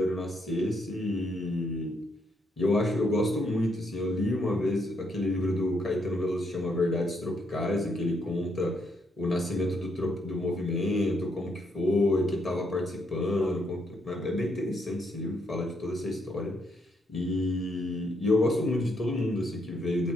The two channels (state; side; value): normal; both; correlation 0.75